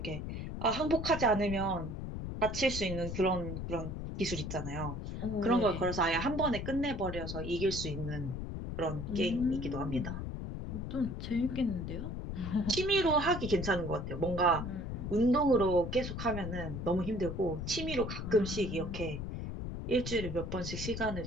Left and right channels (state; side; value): noise; left; rumble, 5 dB below the sound